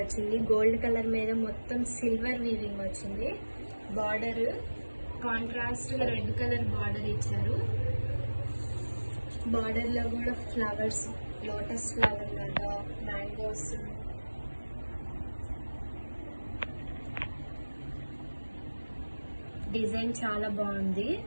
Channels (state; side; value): inverted; both; correlation -1.00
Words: వచ్చింది. గోల్డ్ కలర్ మీద మొత్తం సిల్వర్ వీవింగ్ వచ్చింది. బార్డర్ కాంట్రాస్ట్గా రెడ్ కలర్ బార్డర్ ఇచ్చారు. బార్డర్లో కూడా ఫ్లవర్స్, లోటస్ ఫ్లవర్ లాగా, మ్యాంగోస్, డిజైన్ చాలా బాగుంది.